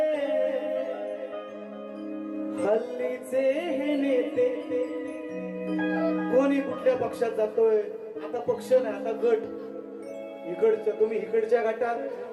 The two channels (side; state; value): both; identical; correlation 1.00